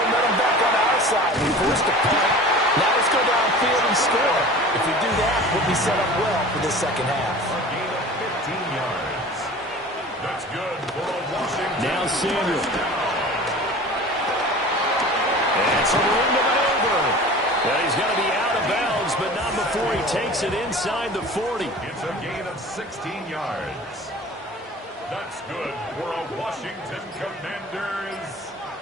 back on our side. We forced the punt. Now let's go downfield and score. If we do that, we'll be set up well for this second half. A gain of 15 yards. That's good for a Washington. Now Samuel. It's a ring to maneuver. Well, he's going to be out of bounds, but not before he takes it inside the 40. It's a gain of 16 yards. That's good for a Washington Commanders.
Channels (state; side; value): normal; both; correlation 0.40